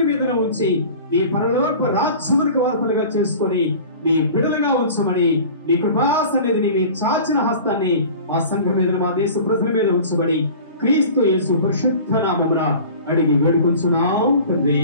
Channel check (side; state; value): both; inverted; correlation -0.41